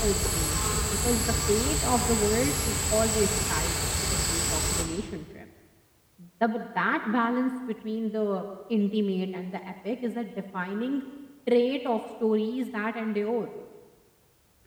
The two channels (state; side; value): identical; both; correlation 1.00